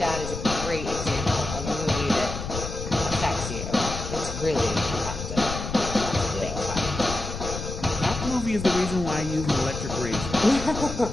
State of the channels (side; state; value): left; noise; rumble, 7 dB below the sound